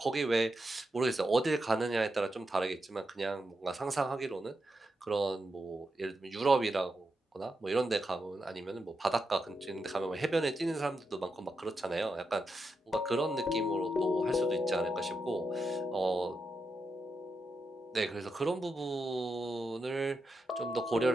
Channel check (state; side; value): normal; both; correlation 0.86